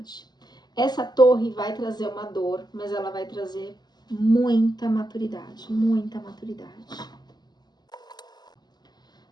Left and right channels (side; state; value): right; late; 0.20 ms